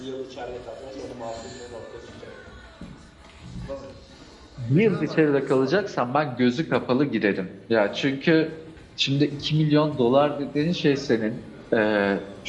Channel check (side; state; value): both; identical; correlation 1.00